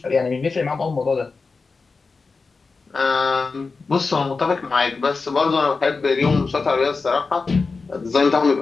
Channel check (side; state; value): right; quieter; 4.3 dB